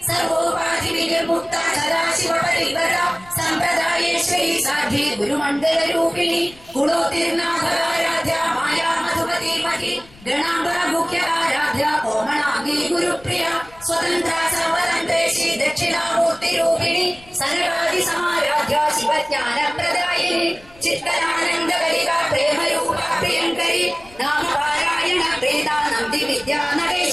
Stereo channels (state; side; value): noise; left; rumble, 24 dB below the sound